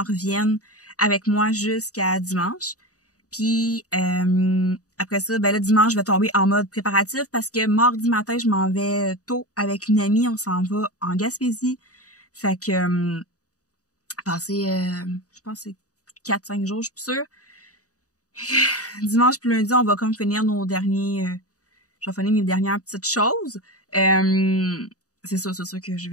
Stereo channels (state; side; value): late; right; 0.66 ms